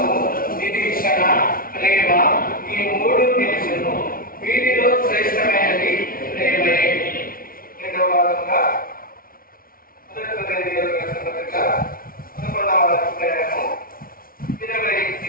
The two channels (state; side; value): late; right; 0.42 ms